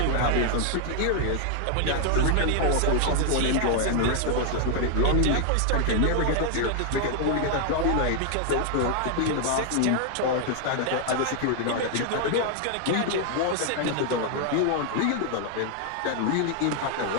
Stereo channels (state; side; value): different; both; correlation 0.00